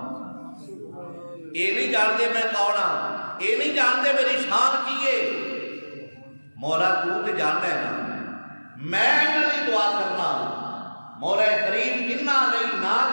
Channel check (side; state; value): both; inverted; correlation -1.00